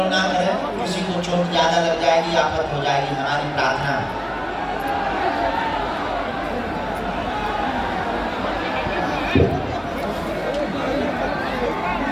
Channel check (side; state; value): both; identical; correlation 1.00